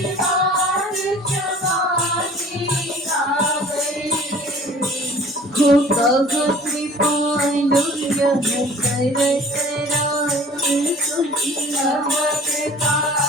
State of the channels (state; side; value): normal; both; correlation 0.48